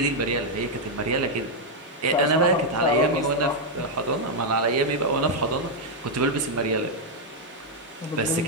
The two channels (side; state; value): both; normal; correlation -0.01